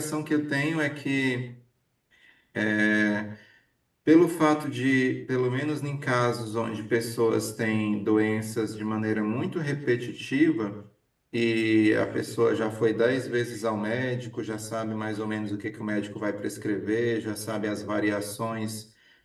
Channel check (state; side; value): identical; both; correlation 1.00